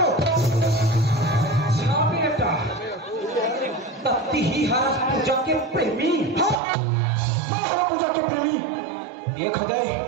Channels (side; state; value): left; drops out; at 6.6 s